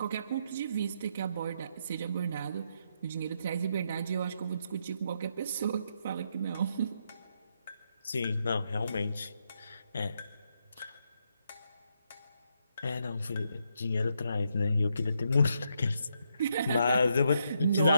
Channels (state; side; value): inverted; both; correlation -0.78